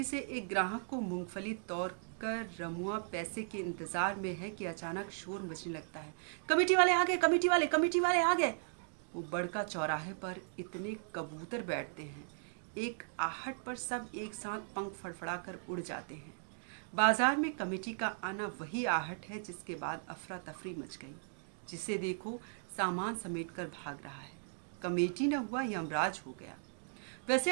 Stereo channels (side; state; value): left; silent; digital silence